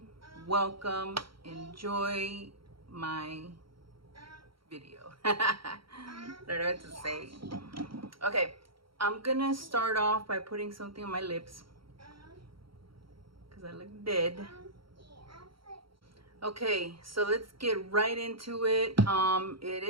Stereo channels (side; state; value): left; late; 0.74 ms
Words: welcome. Enjoy my video. I don't know what to say. Okay, I'm gonna start off by putting something on my lips because I look dead. Okay, so let's get right into it. It